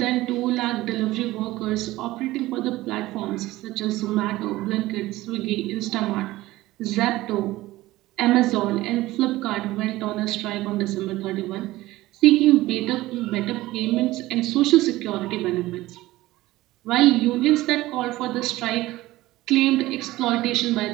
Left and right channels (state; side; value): quieter; left; 17.6 dB